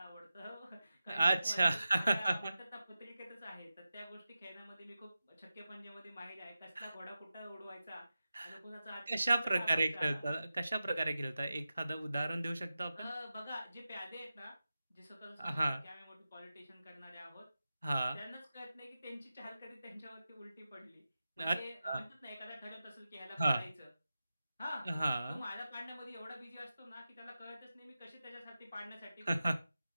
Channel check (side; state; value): both; inverted; correlation -0.93